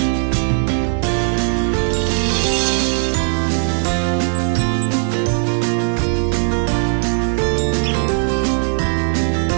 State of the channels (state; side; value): silent; left; digital silence